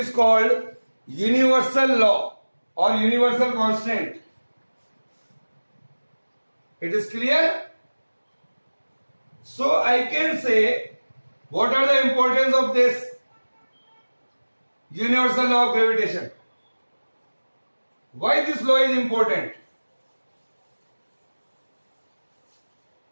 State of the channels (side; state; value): both; inverted; correlation -1.00